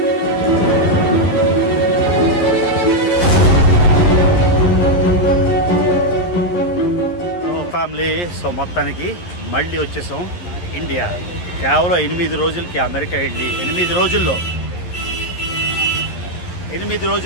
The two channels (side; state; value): right; late; 11 ms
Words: ఫ్యామిలీ, సో మొత్తానికి మళ్ళీ వచ్చేసాం ఇండియా. కేవలం 8 రోజులకి అమెరికా వెళ్ళి 8 రోజుల్లో